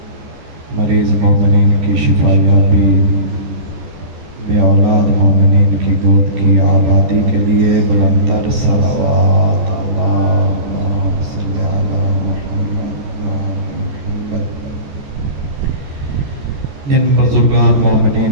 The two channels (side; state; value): left; late; 14 ms